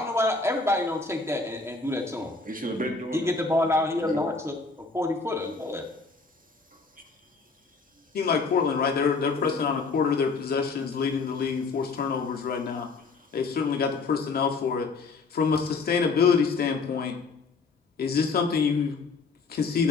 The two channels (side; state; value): right; quieter; 4.2 dB